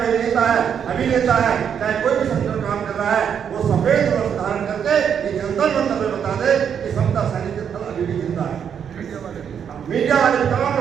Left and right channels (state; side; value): quieter; left; 7.9 dB